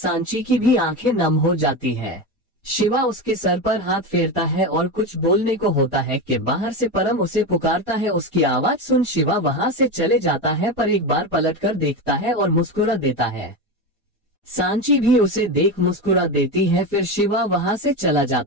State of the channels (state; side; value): normal; both; correlation 0.19